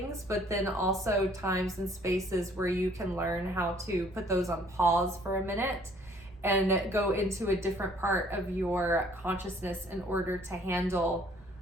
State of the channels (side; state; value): both; normal; correlation 0.59